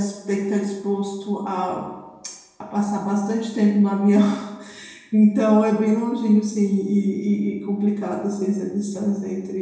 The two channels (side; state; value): both; identical; correlation 1.00